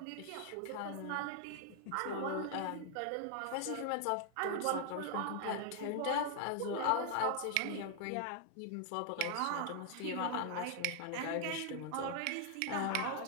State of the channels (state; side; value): different; both; correlation 0.00